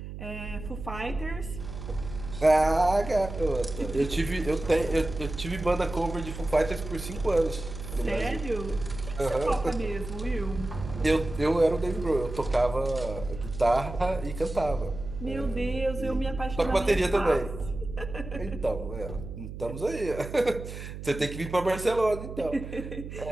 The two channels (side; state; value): right; noise; hum, 10 dB below the sound